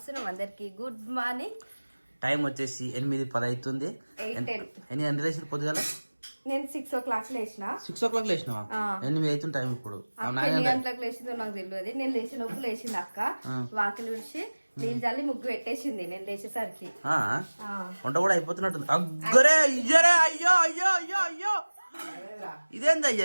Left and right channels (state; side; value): inverted; both; correlation -1.00